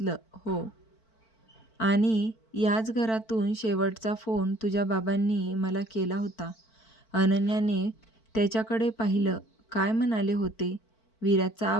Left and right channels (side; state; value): right; late; 4.5 ms